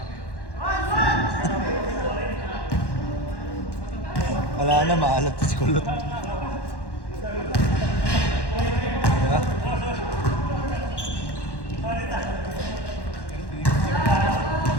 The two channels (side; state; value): right; late; 1.1 ms